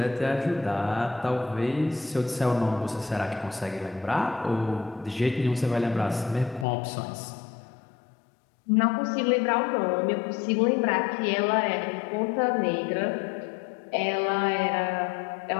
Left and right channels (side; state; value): right; drops out; at 6.7 s